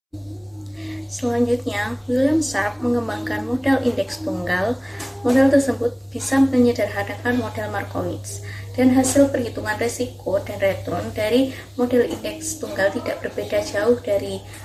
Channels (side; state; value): both; identical; correlation 1.00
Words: Selanjutnya, William Sharpe mengembangkan model indeks tunggal. Model tersebut bisa menyederhanakan model Markowitz, dan hasil perhitungan risiko dan return dari model indeks tunggal tidak berbeda jauh dari